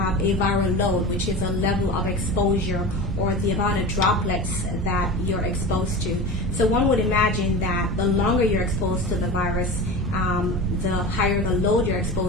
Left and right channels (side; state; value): both; normal; correlation 0.30